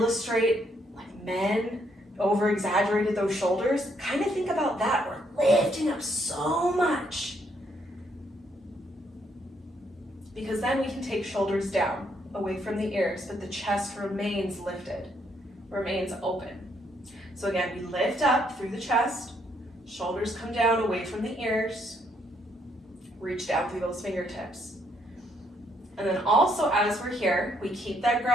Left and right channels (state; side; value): normal; both; correlation 0.72